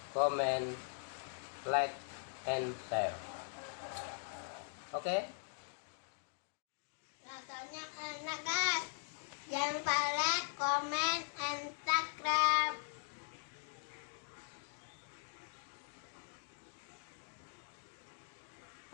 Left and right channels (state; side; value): silent; right; digital silence